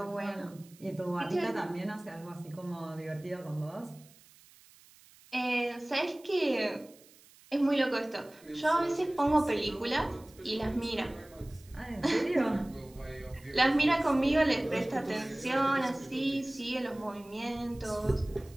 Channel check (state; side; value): noise; right; hiss, 25 dB below the sound